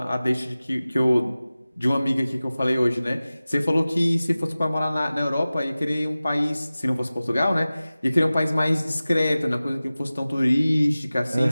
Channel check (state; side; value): inverted; both; correlation -0.97